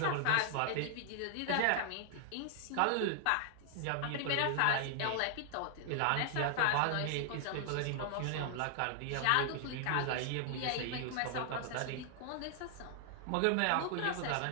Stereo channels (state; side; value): different; both; correlation 0.00